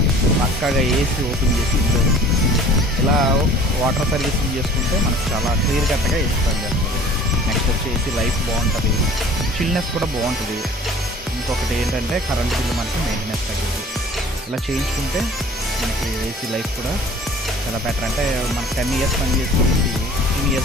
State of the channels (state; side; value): normal; both; correlation 0.48